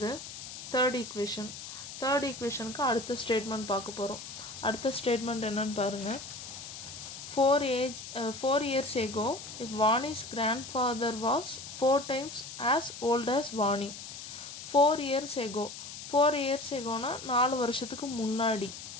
தேர்ட் ஈக்குவேஷனுக்கு அடுத்த ஸ்டேட்மெண்ட் பார்க்க போகிறோம். அடுத்த ஸ்டேட்மெண்ட் என்னன்னு பாருங்கள். 4 years ago, if Vani's grandfather was 4 times as old as Vani. 4 years ago 4 வருஷத்துக்கு முன்னாடி.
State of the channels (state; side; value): noise; left; hiss, 11 dB below the sound